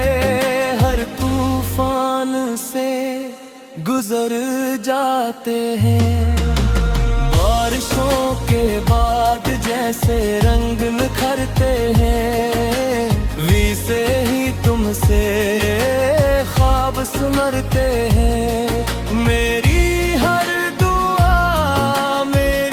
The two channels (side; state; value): both; identical; correlation 1.00